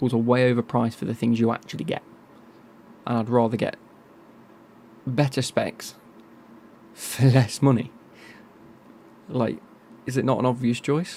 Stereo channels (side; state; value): both; identical; correlation 1.00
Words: are way overpriced for the things you actually get. And I'd rather get better specs for less money. Like, is it not an obvious